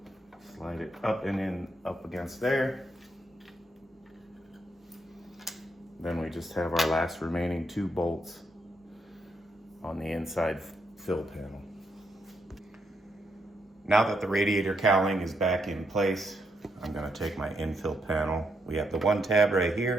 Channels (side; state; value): both; normal; correlation 0.78